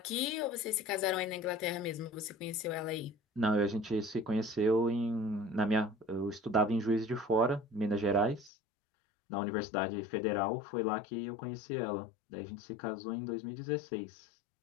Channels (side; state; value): right; drops out; at 8.5 s